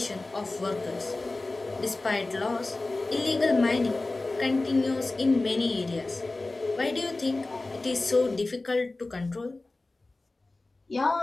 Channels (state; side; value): quieter; right; 3.1 dB